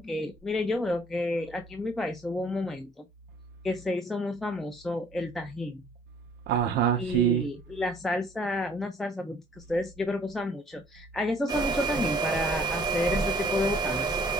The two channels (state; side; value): normal; both; correlation 0.58